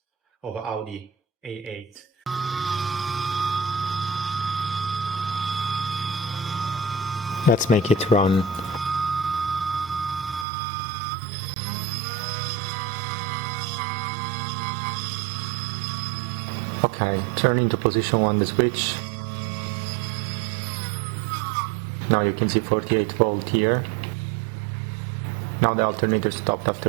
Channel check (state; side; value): drops out; left; at 10.5 s